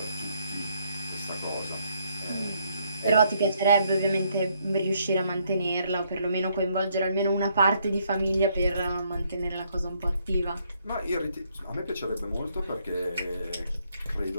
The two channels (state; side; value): inverted; both; correlation -0.71